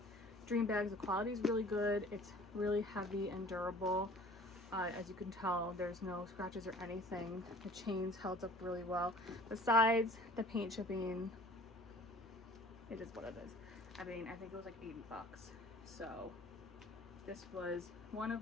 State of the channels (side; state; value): both; normal; correlation 0.48